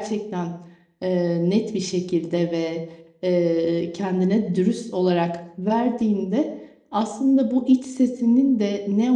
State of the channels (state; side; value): identical; both; correlation 1.00